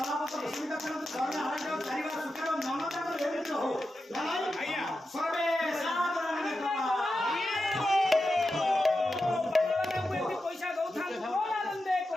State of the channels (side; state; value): both; normal; correlation 0.90